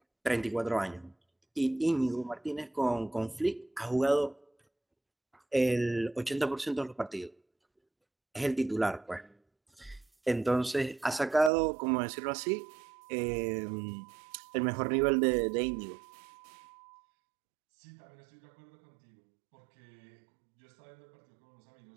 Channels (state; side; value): drops out; left; at 11.5 s